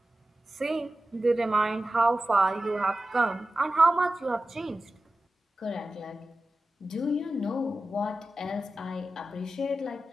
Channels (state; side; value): normal; both; correlation 0.94